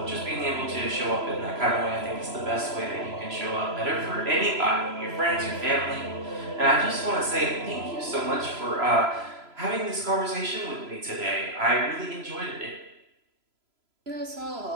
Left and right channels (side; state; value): left; late; 3.0 ms